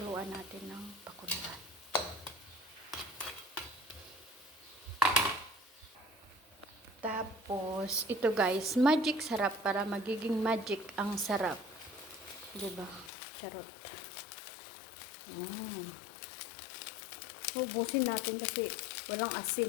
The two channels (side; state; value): right; drops out; at 13.1 s